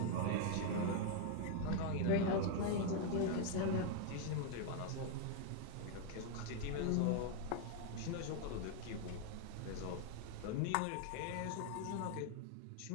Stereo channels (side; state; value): both; different; correlation 0.00